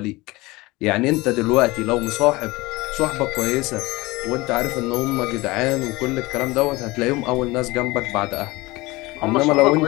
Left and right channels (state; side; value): quieter; right; 21.6 dB